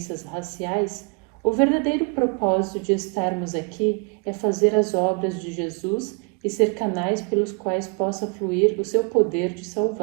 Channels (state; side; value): quieter; left; 35.7 dB